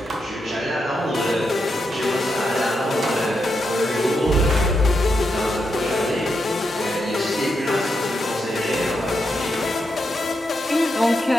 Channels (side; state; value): both; normal; correlation 0.84